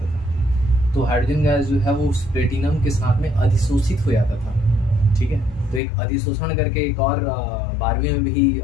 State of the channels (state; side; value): drops out; right; at 5.8 s